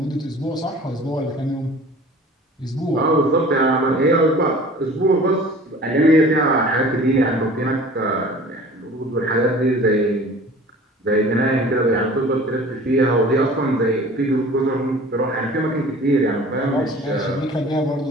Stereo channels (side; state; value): both; normal; correlation 0.45